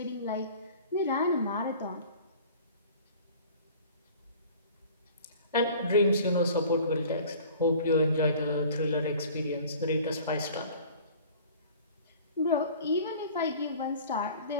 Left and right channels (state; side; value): inverted; both; correlation -0.46